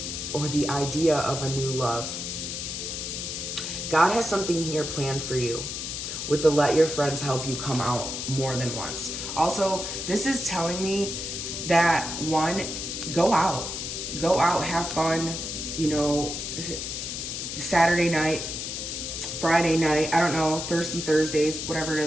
or the idea of a new love. God has something here planned for you with the let your friends help you come out more than once. Also, this is telling me that one, go out, have fun, Saturday night, Friday night, I don't know, Thirsty Thursdays, whatever it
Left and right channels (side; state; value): left; noise; hiss, 5 dB below the sound